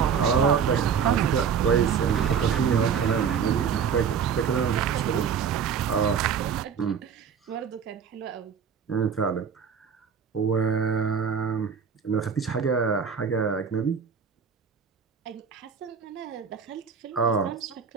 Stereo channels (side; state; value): left; quieter; 6.8 dB